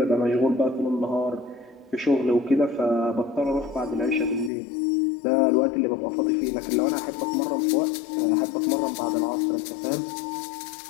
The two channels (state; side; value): drops out; right; at 4.5 s